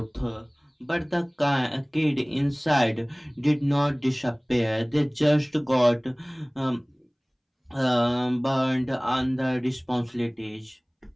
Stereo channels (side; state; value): both; identical; correlation 1.00